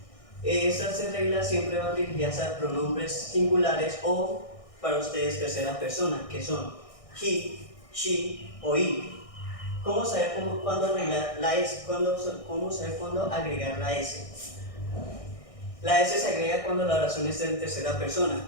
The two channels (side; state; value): right; late; 1.6 ms